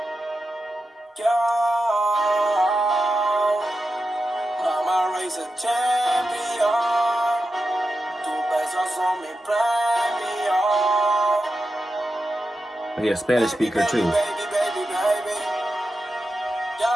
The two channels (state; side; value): normal; both; correlation 0.90